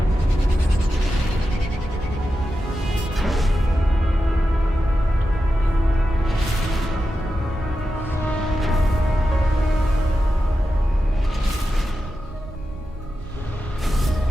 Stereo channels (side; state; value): both; normal; correlation 0.91